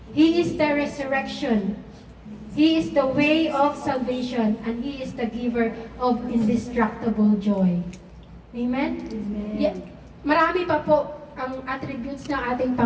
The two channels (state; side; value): identical; both; correlation 1.00